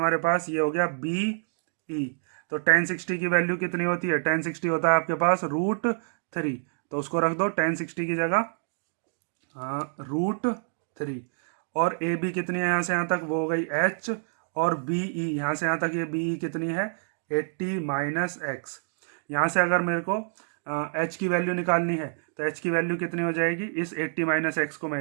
पास, ये हो गया बी ई। तो tan 60 की वैल्यू कितनी होती है, tan 60 होता है आपके पास √3, तो उसको रख दो tan 60 की जगह √3, और ए बी कितनी है यहाँ से यहाँ तक, वो हो गई एच, और बी ई यहाँ से यहाँ तक ये बी ई कितनी है 80 माइनस एक्स। यहाँ से अगर मेरे को एच की वैल्यू निकालनी है तो एच की वैल्यू कितनी हो जाएगी, इस 80 माइनस एक्स को मैं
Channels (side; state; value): left; silent; digital silence